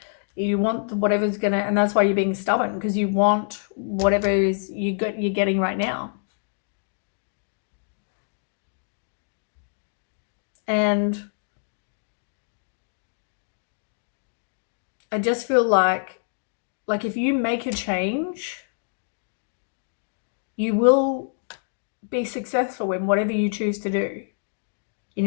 want whatever's gonna, and that's why you're being stubborn, because you want whatever is you're getting right now. And I just feel like if you make a change, you will be successful in whatever you choose to do in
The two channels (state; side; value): silent; right; digital silence